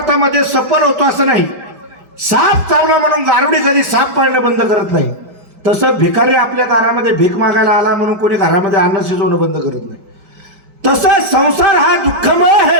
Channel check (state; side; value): late; left; 5.1 ms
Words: सफल होतो असं नाही. साप चावला म्हणून गारुडी कधी साप पाळणं बंद करत नाही. तसं भिकारी आपल्या दारामध्ये भीक मागायला आला म्हणून कोणी घरामध्ये अन्न शिजवणं बंद करत नाही. तसं संसार हा दुःखमय